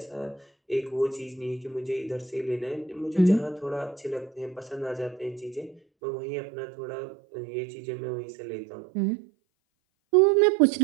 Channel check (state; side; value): drops out; left; at 5.8 s